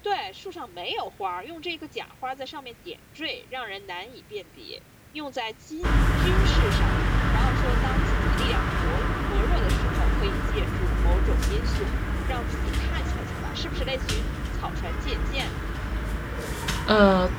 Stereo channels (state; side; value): identical; both; correlation 1.00